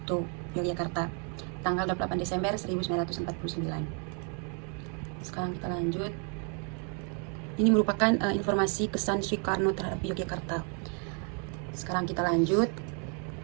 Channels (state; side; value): quieter; left; 39.0 dB